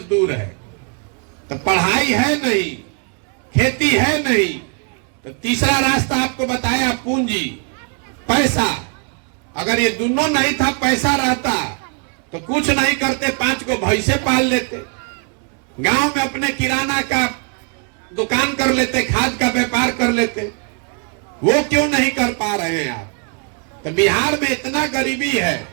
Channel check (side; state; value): left; quieter; 39.0 dB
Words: है। तो पढ़ाई है नहीं, खेती है नहीं। तो तीसरा रास्ता आपको बताया, पूंजी, पैसा। अगर ये दोनों नहीं था, पैसा रहता तो कुछ नहीं करते, 5 को भैंसे पाल लेते, गांव में अपने किराना का दुकान कर लेते, खाद का व्यापार कर लेते। वो क्यों नहीं कर पा रहे हैं आप? तो बिहार में इतना गरीबी है